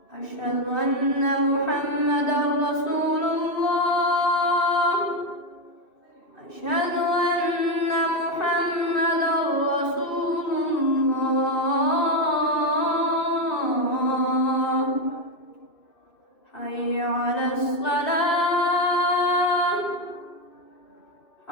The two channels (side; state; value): right; late; 2.7 ms